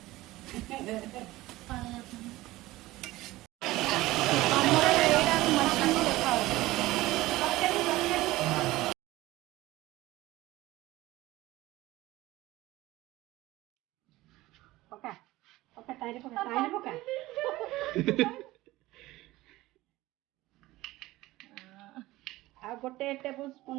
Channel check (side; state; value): left; quieter; 18.1 dB